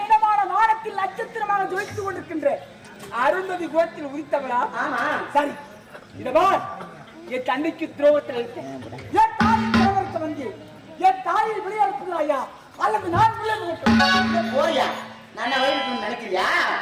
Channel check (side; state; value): both; identical; correlation 1.00